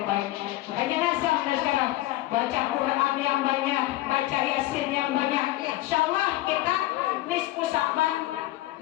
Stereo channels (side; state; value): right; quieter; 16.7 dB